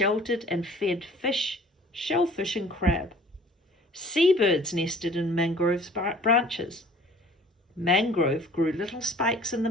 and fed fish, shellfish, and crab. Seabirds nested in mangrove's branches. Mangrove grew little spikes in the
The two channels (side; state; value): both; normal; correlation 0.50